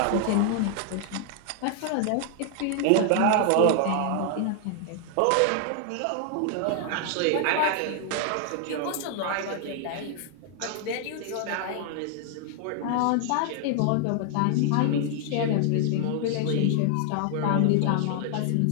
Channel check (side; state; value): both; different; correlation 0.00